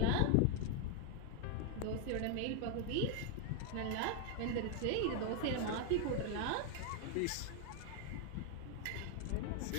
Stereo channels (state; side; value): different; both; correlation 0.00